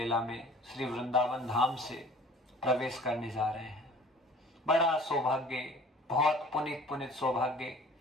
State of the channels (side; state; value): both; normal; correlation 0.48